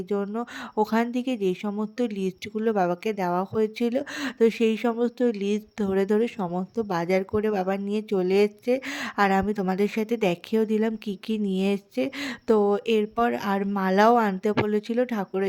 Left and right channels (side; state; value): both; identical; correlation 1.00